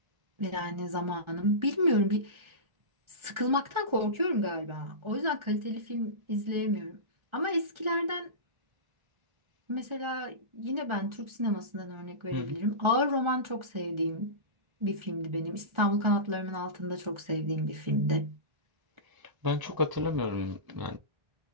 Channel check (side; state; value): left; late; 1.4 ms